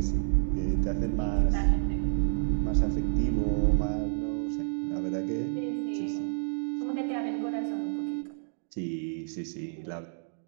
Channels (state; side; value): silent; left; digital silence